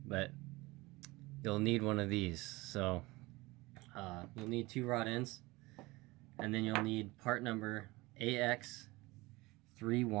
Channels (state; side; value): quieter; left; 21.9 dB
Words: But you'll need one of these. So you'll need 2 rod ends, and then you'll need part number